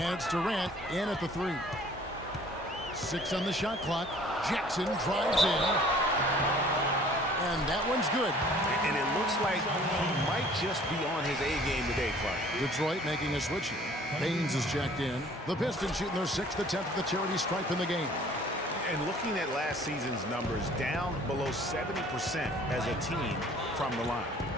it's Durant in at the 3. 6 on the shot clock. Jackson drives in. And that one's good. And it looks like he might just be on his A game today, Clark. Detroit making a switch here. Baines is checked in. The Pistons shooting their 6th attempt at the charity stripe in the game. And looking at last season's numbers, down below 70% as a team from the line.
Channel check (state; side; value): normal; both; correlation 0.53